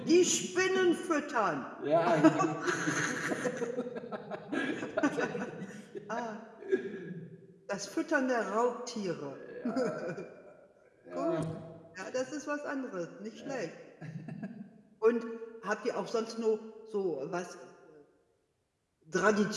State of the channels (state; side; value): identical; both; correlation 1.00